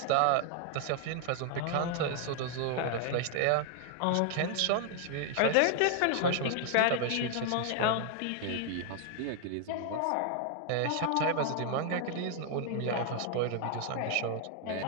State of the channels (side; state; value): both; different; correlation 0.00